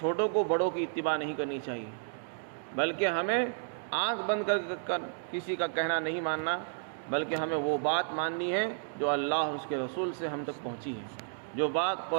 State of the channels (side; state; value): left; silent; digital silence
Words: کو بڑوں کی اتباع نہیں کرنی چاہیے، بلکہ ہمیں آنکھ بند کر کسی کا کہنا نہیں ماننا، بلکہ ہمیں وہ بات ماننی ہے جو اللہ اور اس کے رسول سے ہم تک پہنچی ہے، جو بات